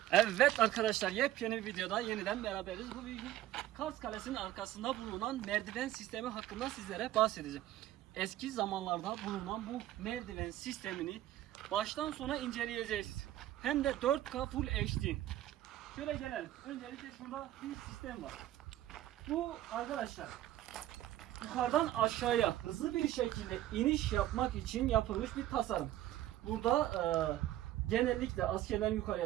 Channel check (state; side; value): quieter; left; 13.9 dB